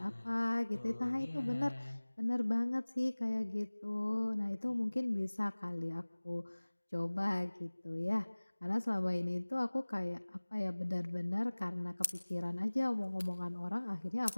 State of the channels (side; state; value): both; inverted; correlation -1.00